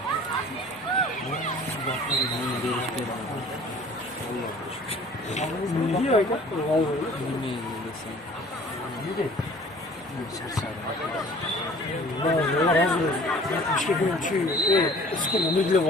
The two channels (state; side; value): normal; both; correlation 0.49